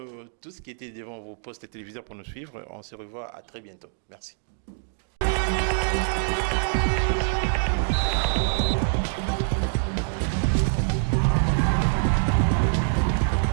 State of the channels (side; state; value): left; silent; digital silence